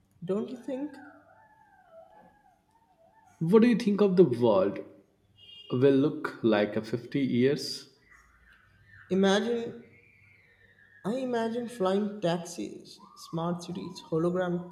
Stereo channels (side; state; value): both; identical; correlation 1.00